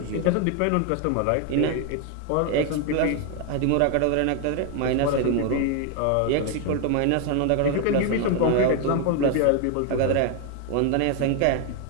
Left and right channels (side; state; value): both; different; correlation 0.01